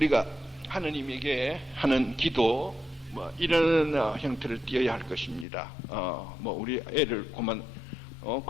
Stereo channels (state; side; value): drops out; right; at 5.5 s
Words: 하느님에게 하는 기도 이런 형태를 띄어야 할 것입니다. 우리 애를 그만